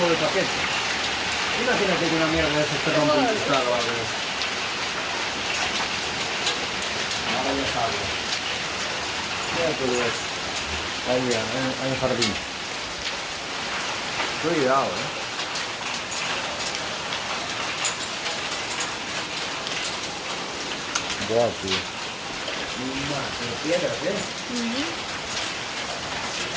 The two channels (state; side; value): identical; both; correlation 1.00